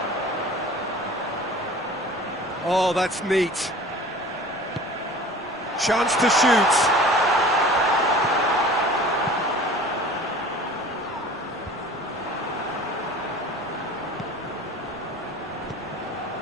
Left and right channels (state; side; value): noise; left; rumble, 28 dB below the sound